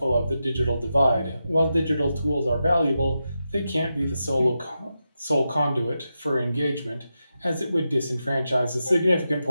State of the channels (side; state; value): both; inverted; correlation -0.88